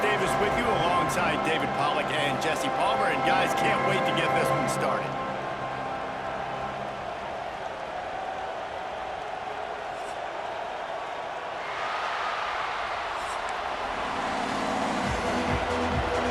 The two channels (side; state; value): both; identical; correlation 1.00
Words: Davis with you alongside David Pollack and Jesse Palmer. And guys, can't wait to get this one started.